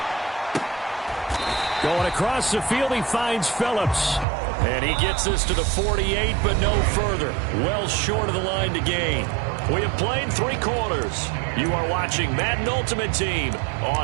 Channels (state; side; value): drops out; left; at 4.2 s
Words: Going across the field, he finds Phillips. And he gets this to the 48, but no further. Well short of the line to gain. We have played 3 quarters. You are watching Madden Ultimate Team